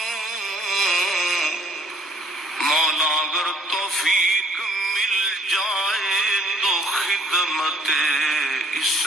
مولا اگر توفیق مل جائے تو خدمت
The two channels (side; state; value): both; normal; correlation 0.58